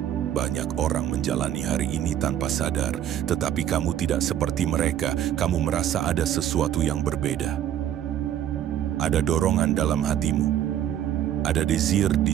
Banyak orang menjalani hari ini tanpa sadar, tetapi kamu tidak seperti mereka. Kamu merasa ada sesuatu yang berbeda. Ada dorongan dalam hatimu. Ada desire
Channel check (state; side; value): quieter; left; 10.9 dB